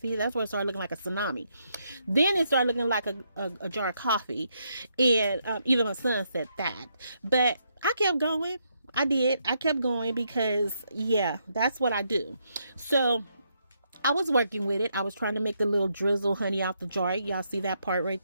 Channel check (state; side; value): inverted; both; correlation -0.77